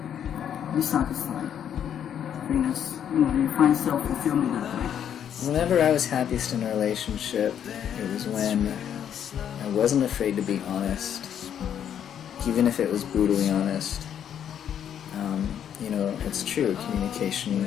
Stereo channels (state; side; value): quieter; right; 9.2 dB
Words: Be satisfied. Because, you know, you find self-fulfillment that way. Whenever I was happiest in a relationship, it was when I wasn't afraid to be honest, even if it was brutally honest. You know, it's true, communication